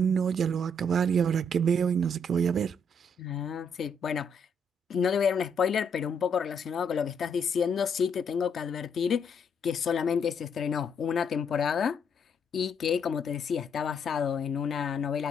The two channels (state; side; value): normal; both; correlation 0.72